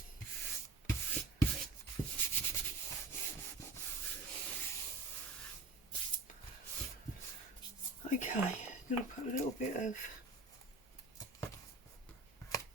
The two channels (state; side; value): quieter; left; 3.5 dB